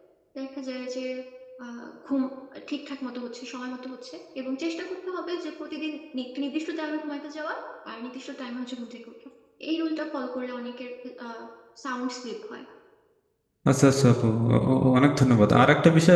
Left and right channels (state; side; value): identical; both; correlation 1.00